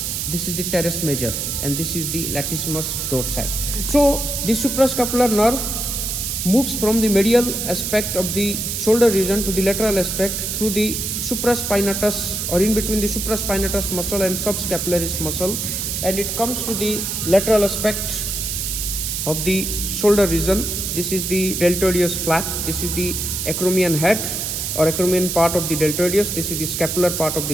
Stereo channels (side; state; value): right; noise; hiss, 2 dB below the sound